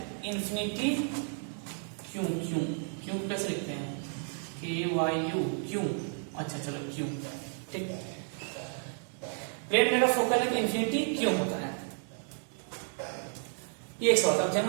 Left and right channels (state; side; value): silent; left; 56 dB below the other